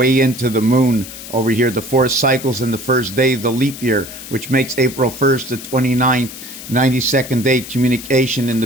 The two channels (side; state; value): left; noise; hiss, 13 dB below the sound